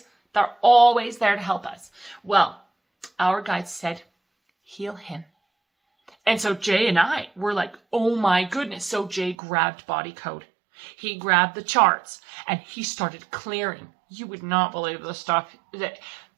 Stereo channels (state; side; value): drops out; left; at 9.3 s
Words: They're always there to help us. Well, our guides said, heal him. And so Jay and I were like, oh my goodness. So Jay grabbed Body Code. He grabbed the charts, and he started clearing. You would not believe the stuff that